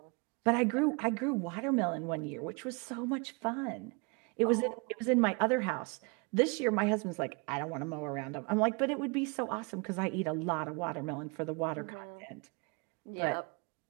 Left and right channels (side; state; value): left; quieter; 31.9 dB